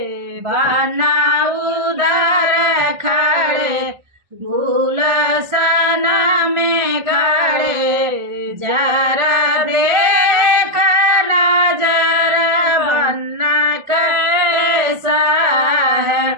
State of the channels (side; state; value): left; late; 1.4 ms